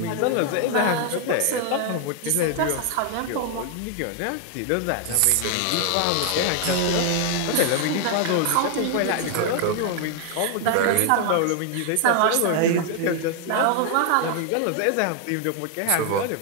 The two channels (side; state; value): both; different; correlation 0.00